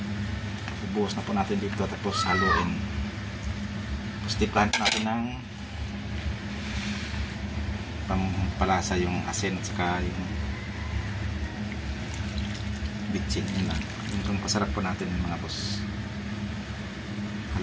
ibuhos na po natin dito, tapos haluin. Tapos tiplahan po natin ng pampalasa, yung asin at saka yung bitchin. Yun lang. Yung pasarap po natin mga boss.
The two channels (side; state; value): both; identical; correlation 1.00